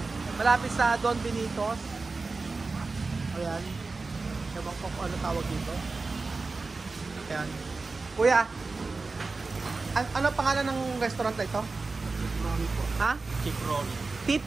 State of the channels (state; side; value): quieter; left; 3.9 dB